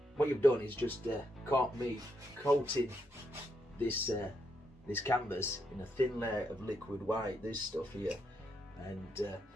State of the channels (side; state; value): both; normal; correlation 0.79